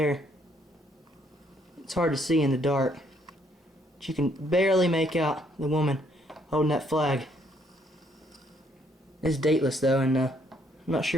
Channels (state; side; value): normal; both; correlation 0.69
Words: It's hard to see in the dark, but you can barely make out the woman holding that flag. It's dateless though, and I'm not